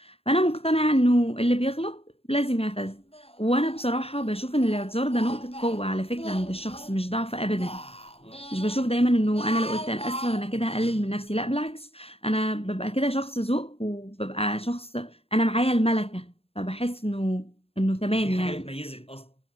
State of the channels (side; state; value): right; late; 0.28 ms